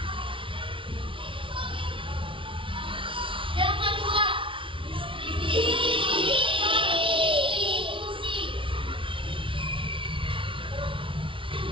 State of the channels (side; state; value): left; late; 0.25 ms